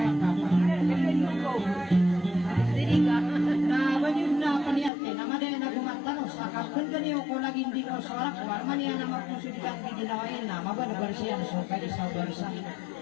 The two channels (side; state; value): right; drops out; at 4.9 s